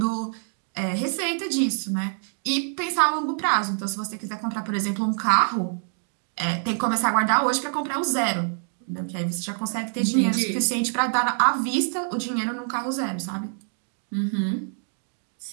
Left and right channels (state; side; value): silent; left; 61 dB below the other